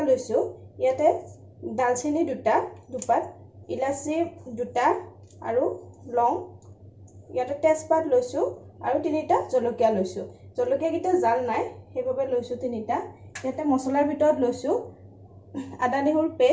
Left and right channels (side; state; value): both; identical; correlation 1.00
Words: লৈছো। ইয়াতে দালচেনি 2টা, দুপাত, ইলাচি 2টা আৰু লং, ইয়াতে তেজপাত লৈছো আৰু 3টা জলকীয়া লৈছো। জলকীয়া কিটা জাল নাই সেইভাবে লৈছো 3টা। ইয়াতে মছলাৰ ভিতৰত লৈছো আদা নহৰু